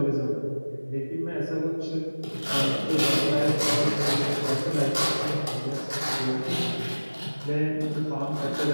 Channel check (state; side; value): inverted; both; correlation -1.00